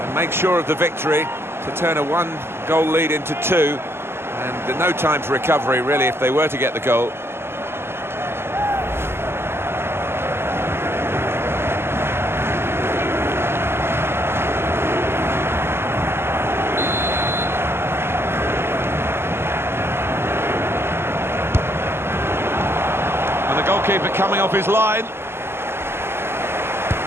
make sure of the victory, to turn a one-goal lead into two. And no time for recovery, really, if they were to get the goal. And the goalkeeper coming off his line.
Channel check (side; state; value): left; late; 0.12 ms